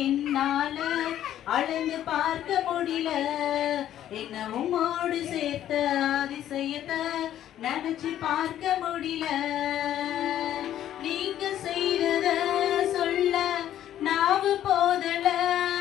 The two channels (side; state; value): right; quieter; 11.6 dB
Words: என்னால அளந்து பார்க்க முடியல. என்ன உம்மோடு சேர்த்த அதிசயத்தை நினைச்சு பார்க்க முடியல. நீங்க செய்தத சொல்ல நாவு போதல.